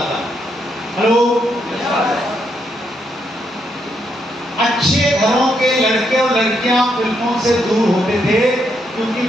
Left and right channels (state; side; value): normal; both; correlation 0.78